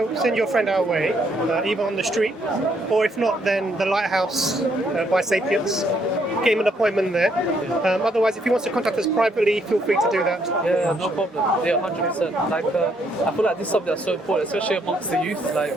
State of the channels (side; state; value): both; normal; correlation 0.71